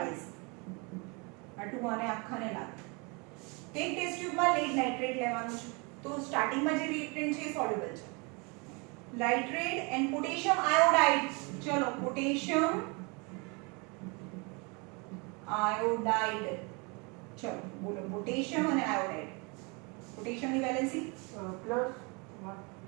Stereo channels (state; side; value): quieter; left; 30.7 dB